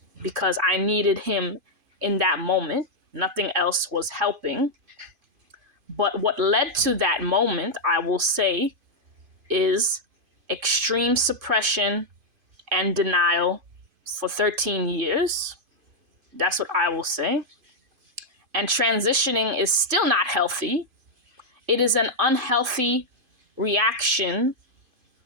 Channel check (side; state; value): left; late; 2.5 ms